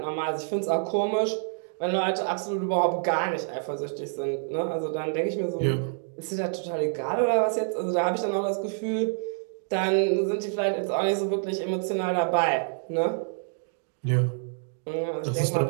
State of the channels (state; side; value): silent; left; digital silence